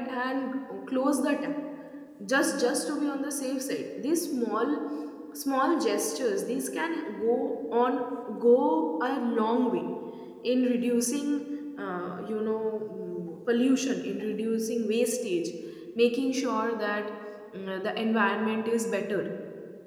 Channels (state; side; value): identical; both; correlation 1.00